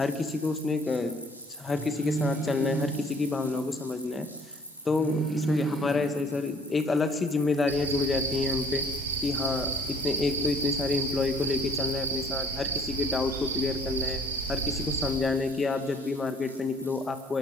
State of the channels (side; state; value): both; normal; correlation 0.57